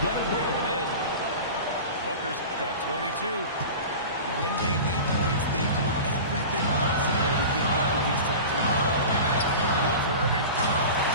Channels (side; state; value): both; inverted; correlation -0.33